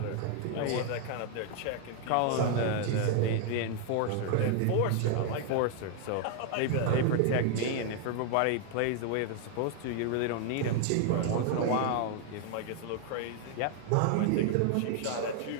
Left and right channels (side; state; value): both; different; correlation 0.00